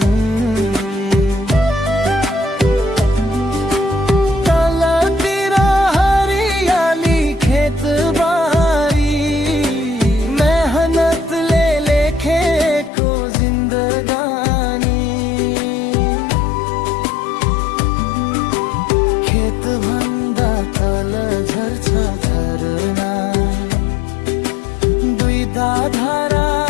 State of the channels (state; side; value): drops out; right; at 12.9 s